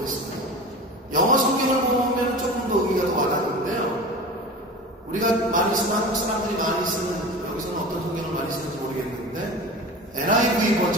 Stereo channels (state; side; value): normal; both; correlation 0.33